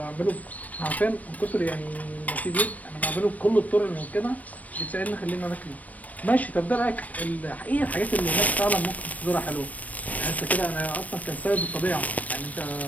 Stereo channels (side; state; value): right; late; 0.073 ms